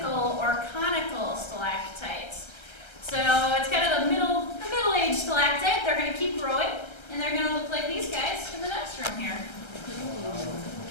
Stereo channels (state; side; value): late; right; 1.3 ms